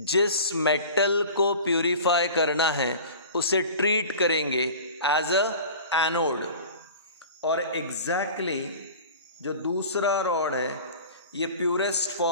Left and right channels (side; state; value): both; inverted; correlation -0.39